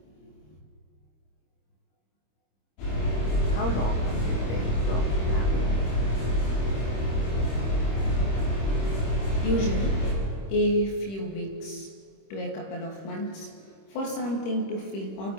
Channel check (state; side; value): late; right; 26 ms